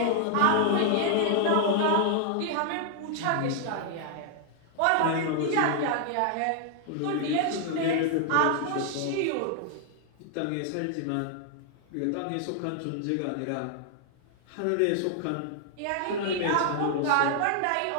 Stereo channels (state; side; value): different; both; correlation 0.00